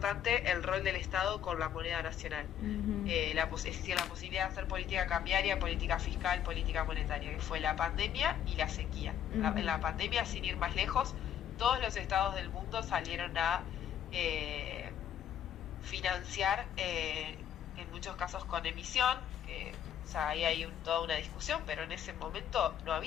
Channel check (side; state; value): right; quieter; 10.0 dB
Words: el rol del Estado con la moneda nacional. La posibilidad de hacer política cambiaria, política fiscal, política monetaria, que fue la pandemia y la sequía. En la pandemia, sin ir más lejos, todos los estados del mundo salieron a financiar, en muchos casos con emisión, o sea, ahí hay toda una discusión, pero en ese momento no